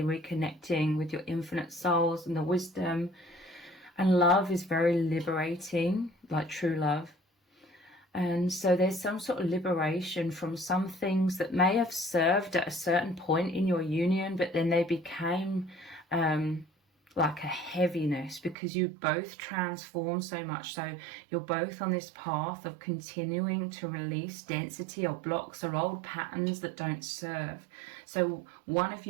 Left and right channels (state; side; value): drops out; left; at 18.6 s